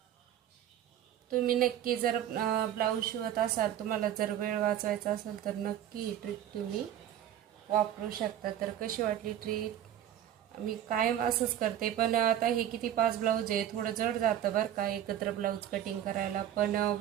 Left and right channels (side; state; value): left; quieter; 11.0 dB